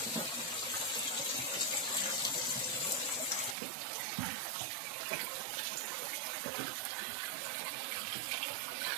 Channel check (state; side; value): drops out; left; at 3.6 s